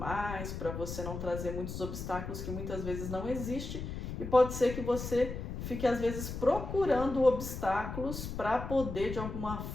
para você não trazer muitos obstáculos que muitas vezes não existem, e pode ser que você fique às vezes procurando obstáculos para poder de alguma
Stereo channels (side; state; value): left; noise; rumble, 6 dB below the sound